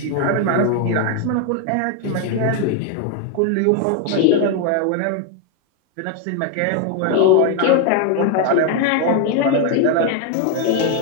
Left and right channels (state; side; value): different; both; correlation 0.01